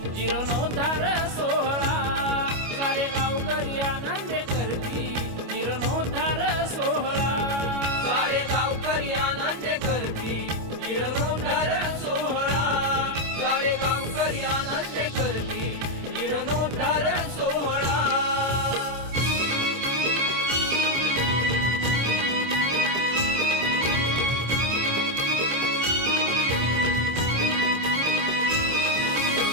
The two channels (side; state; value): left; late; 25 ms